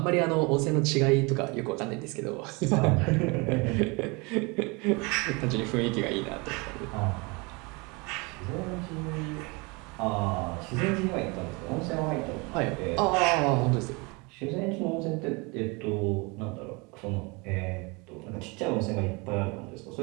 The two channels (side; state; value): left; quieter; 27.9 dB